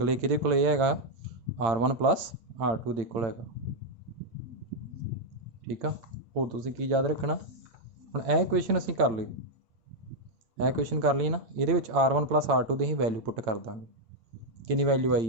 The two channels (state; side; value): late; left; 8.8 ms